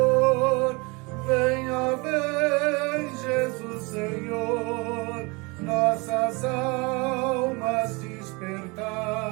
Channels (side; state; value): left; quieter; 27.4 dB